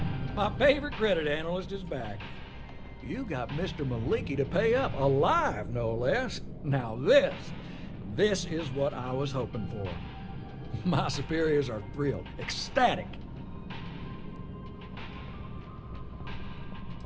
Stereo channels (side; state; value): both; identical; correlation 1.00